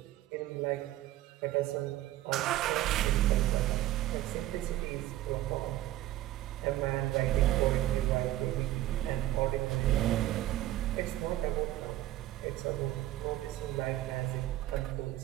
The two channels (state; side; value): quieter; left; 14.7 dB